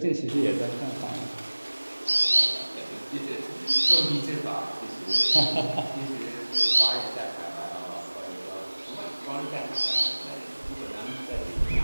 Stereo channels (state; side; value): inverted; both; correlation -1.00